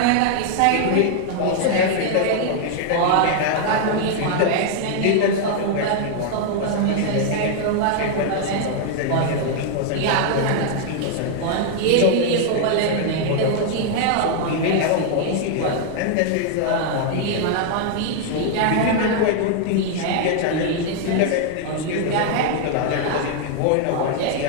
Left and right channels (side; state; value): both; different; correlation 0.00